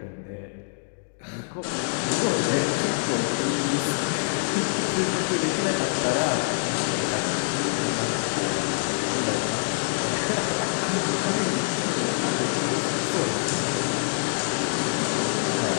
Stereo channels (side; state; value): right; silent; digital silence